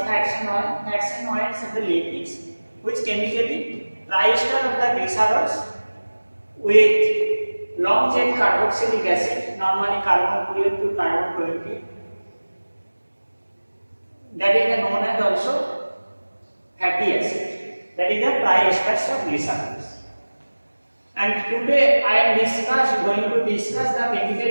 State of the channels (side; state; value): both; inverted; correlation -1.00